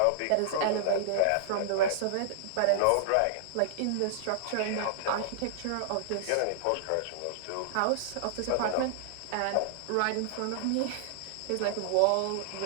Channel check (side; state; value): both; different; correlation -0.01